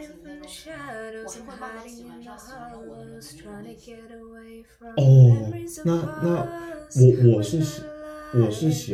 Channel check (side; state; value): both; identical; correlation 1.00